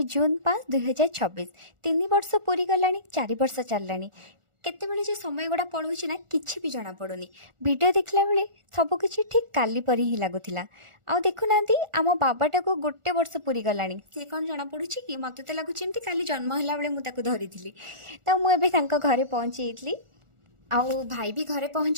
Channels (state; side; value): late; left; 1.4 ms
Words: जून 5 2026 3 वर्ष पूरी गलानी 4 वर्ष चललानी। केतेबेले जे समय गुड़ा पड़ोची ना किछि भी जना पड़ुनी। वीडियो देखला बेले सब किछि ठीक काली परी ही लागुथिला। आ देखुनांती आम बाबाटा को गोटे वर्ष पूरी गलानी सी कौन जना पड़ुची कि मते तो लागुछि एमती काली जन्म होला बेले मु ताको धरिथिली। तो मु एबे तांको घरे पहुंची जेतली। आउ भाई भी घरे